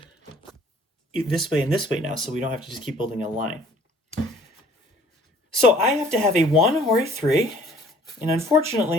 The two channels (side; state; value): both; normal; correlation 0.55